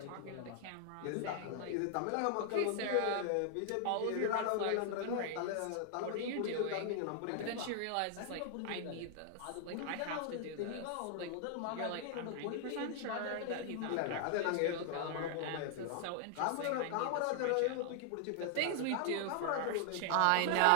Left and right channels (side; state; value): both; different; correlation 0.00